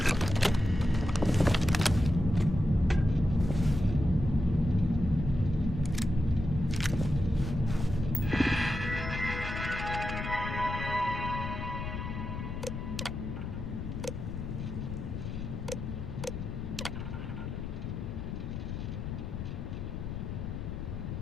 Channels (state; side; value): noise; left; rumble, 5 dB below the sound